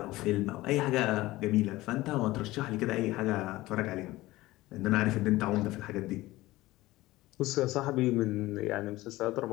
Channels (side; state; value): right; quieter; 18.2 dB